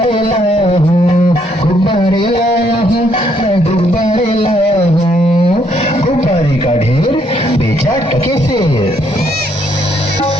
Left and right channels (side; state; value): both; normal; correlation 0.70